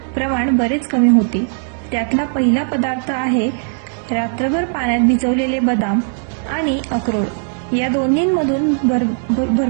प्रमाण बरेच कमी होते. त्यातला पहिला पदार्थ आहे रात्रभर पाण्यात भिजवलेले बदाम आणि अक्रोड. या दोन्हींमधून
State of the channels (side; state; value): left; silent; digital silence